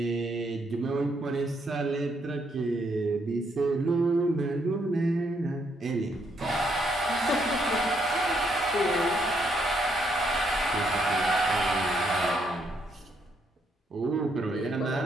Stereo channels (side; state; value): both; normal; correlation 0.74